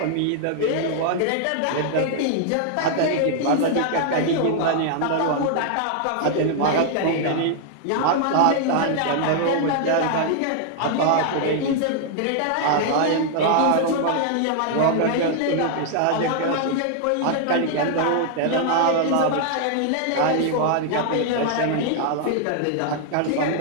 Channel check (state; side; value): different; both; correlation 0.00